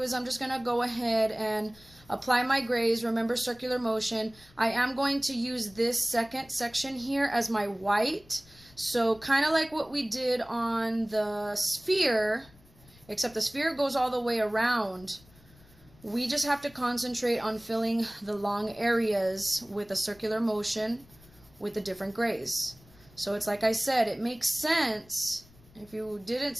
is I'm just going to go ahead and apply my grays. Remember, circular motion. I am going to use this second section here as my white. So kind of like what we did on the sphere, except the sphere goes all the way around. We just have to concentrate on filling the long areas with a circular motion with the different grays. So it's like I said, it makes sense. If you didn't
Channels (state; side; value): noise; left; rumble, 26 dB below the sound